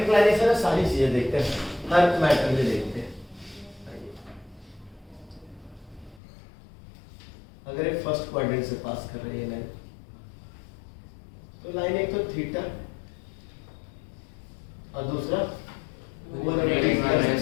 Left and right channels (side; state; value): right; drops out; at 6.2 s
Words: में सारी चीजें देखते हैं, हर मैटर में देखते हैं। अगर एक फर्स्ट क्वाड्रेंट से पास कर रही है लाइन, तो लाइन एक तो थीटा और दूसरा